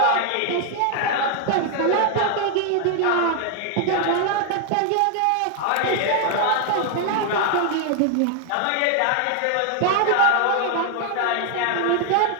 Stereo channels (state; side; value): different; both; correlation 0.00